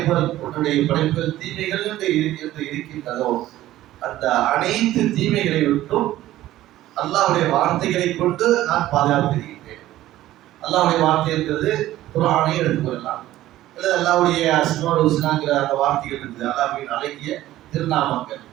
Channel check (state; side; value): quieter; left; 14.7 dB